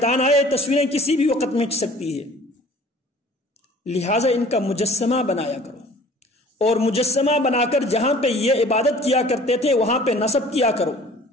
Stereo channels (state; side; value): normal; both; correlation 0.49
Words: آئے، تصویریں کسی بھی وقت مٹ سکتی ہے، لہٰذا ان کا مجسمہ بنایا کرو، اور مجسمہ بنا کر جہاں پہ یہ عبادت کیا کرتے تھے وہاں پہ نصب کیا کرو۔